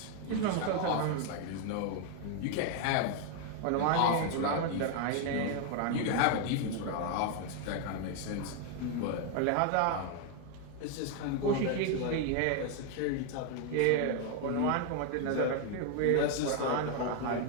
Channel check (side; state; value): both; different; correlation 0.01